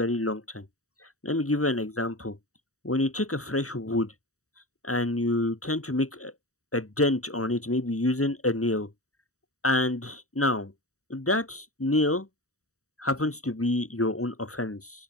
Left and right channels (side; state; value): right; late; 0.65 ms